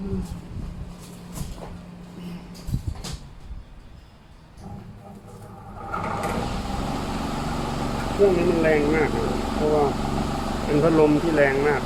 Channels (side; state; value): both; identical; correlation 1.00